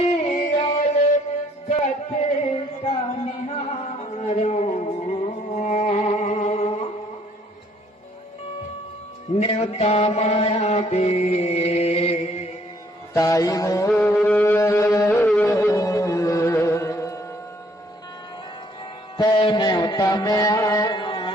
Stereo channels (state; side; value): normal; both; correlation 0.64